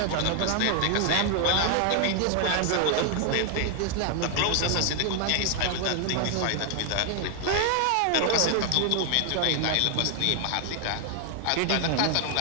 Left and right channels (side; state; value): both; different; correlation 0.00